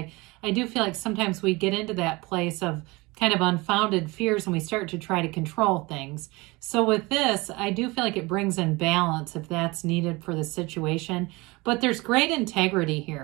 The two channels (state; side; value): quieter; left; 23.6 dB